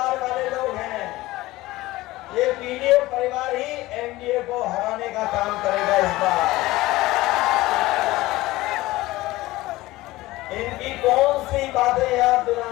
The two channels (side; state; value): right; quieter; 18.5 dB